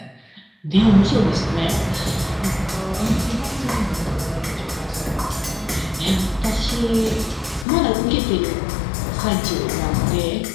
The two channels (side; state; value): right; drops out; at 7.7 s